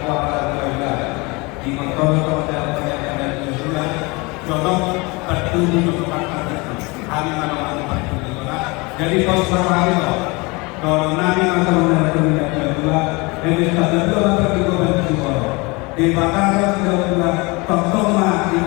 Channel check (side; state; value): right; quieter; 26.2 dB